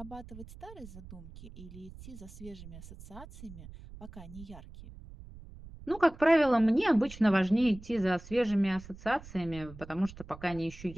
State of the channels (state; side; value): noise; right; rumble, 16 dB below the sound